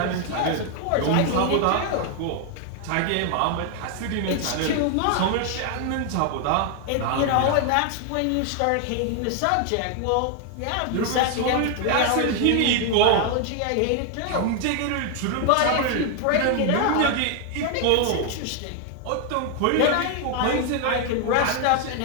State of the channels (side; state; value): both; different; correlation 0.00